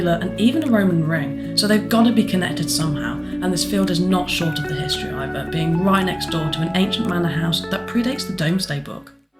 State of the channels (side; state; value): both; identical; correlation 1.00